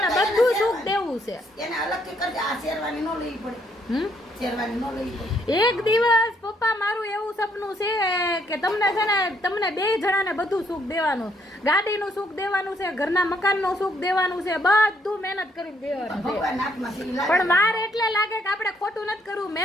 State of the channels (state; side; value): normal; both; correlation 0.70